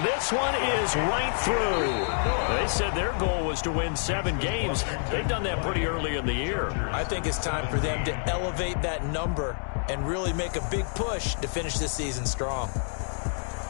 this one is right through. They said their goal was to win 7 games. They've done that pretty early in the year. I think it's time for them to elevate that number and really make a big push to finish this season strong.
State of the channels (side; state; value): right; silent; digital silence